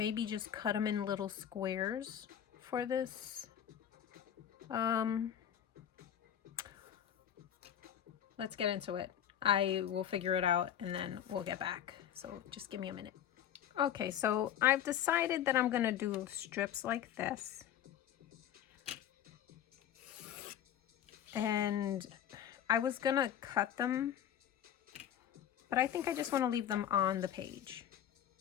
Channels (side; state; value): right; quieter; 10.2 dB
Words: just cut them in little squares for this. Let's get into it. I will figure it out and then we'll get back. So just give me a minute. Okay, so I've decided that I'm gonna do strips like this. And I was gonna cut them, but I think I just wanna leave them on the page